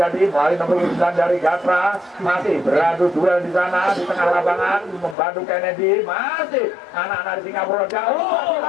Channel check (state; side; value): drops out; right; at 5.2 s